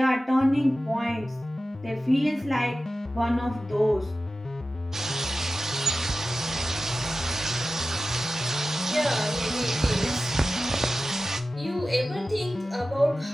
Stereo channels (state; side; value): normal; both; correlation 0.94